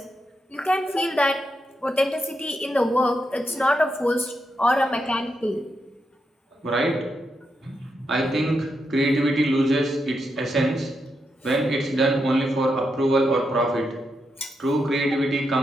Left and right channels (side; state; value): both; normal; correlation 0.84